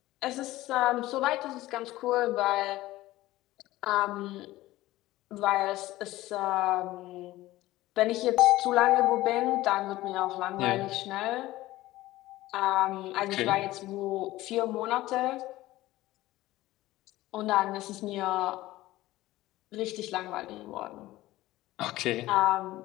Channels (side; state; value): right; quieter; 16.9 dB